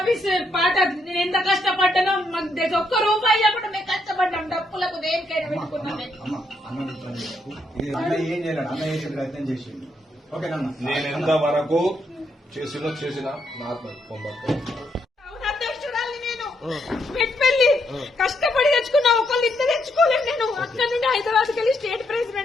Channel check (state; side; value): normal; both; correlation 0.77